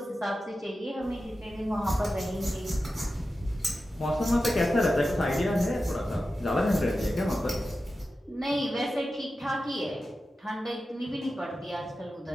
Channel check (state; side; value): normal; both; correlation 0.93